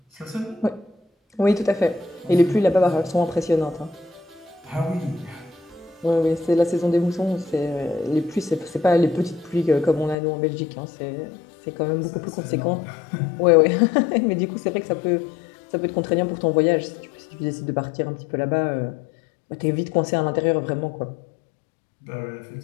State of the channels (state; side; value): drops out; right; at 10.2 s